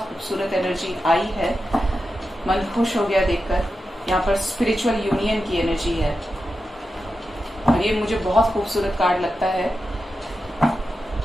एनर्जी आई है, मन खुश हो गया देखकर। यहाँ पर स्पिरिचुअल यूनियन की एनर्जी है, और ये मुझे बहुत खूबसूरत कार्ड लगता है।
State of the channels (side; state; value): both; normal; correlation 0.90